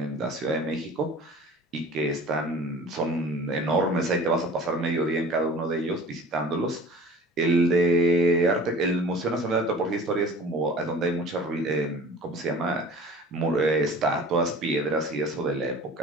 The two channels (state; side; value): normal; both; correlation 0.44